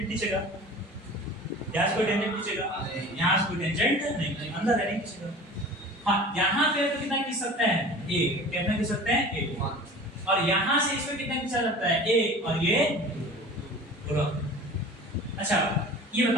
खींचेगा, यहाँ से कोई टेंजेंट खींचेगा, यहाँ से कोई टेंजेंट नहीं, अंदर है नहीं खींचेगा। हाँ यहाँ पे तो कितना खींच सकते हैं, 1, कितना खींच सकते हैं, 1। और यहाँ से इसमें कितना खींचा जाता है, 1, और ये 2। अच्छा ये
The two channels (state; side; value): normal; both; correlation 0.40